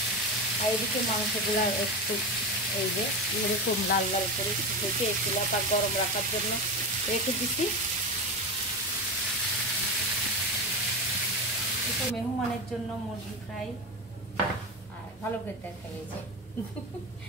আর এদিকে মাংসগুলো একটু এই যে এরকম লাল লাল করে ভেজে চুলাটা গরম রাখার জন্য রেখে দিচ্ছি। একটু মেহমানের জন্য মুরগি ফ্রাই আর ভালো করে তরকারি, এই যে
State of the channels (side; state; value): both; normal; correlation 0.20